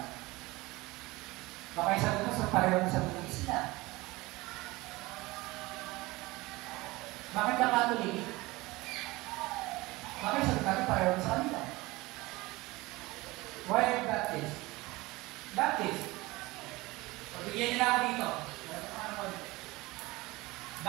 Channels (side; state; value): left; quieter; 21.2 dB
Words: Baka yung sagot ko sa pareho ng sagot ng Islam. Bakit ka Catholic? Baka yung sagot natin pareho sa kanila. Why are you Baptist? Baptist. Pagbigyan nila ako dito.